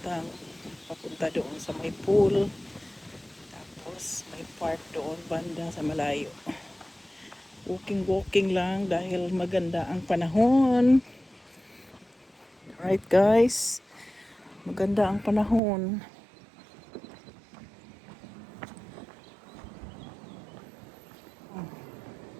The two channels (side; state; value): left; drops out; at 15.6 s